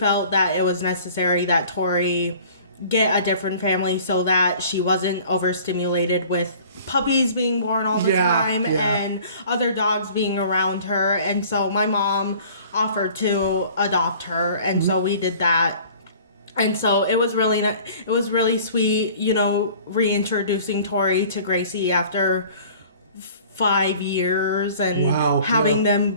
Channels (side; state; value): both; inverted; correlation -0.49